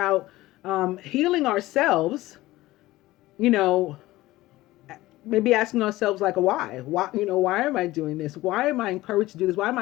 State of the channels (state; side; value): quieter; right; 17.6 dB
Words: healing ourselves, maybe asking ourselves like, why, why am I doing this? Why am I encouraged to do this? Why am